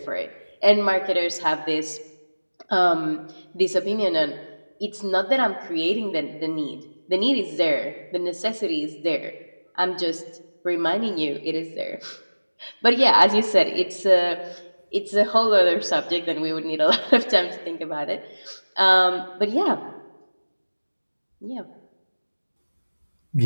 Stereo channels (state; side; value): inverted; both; correlation -1.00